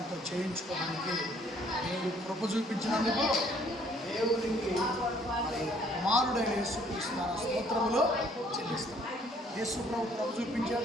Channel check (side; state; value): both; normal; correlation 0.62